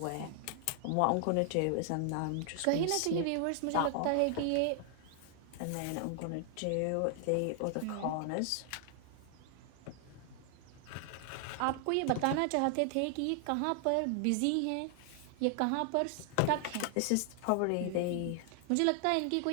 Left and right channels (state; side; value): different; both; correlation 0.00